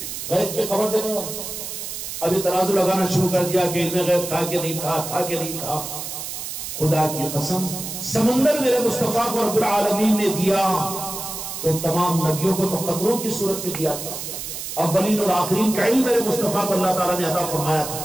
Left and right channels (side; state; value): right; noise; hiss, 7 dB below the sound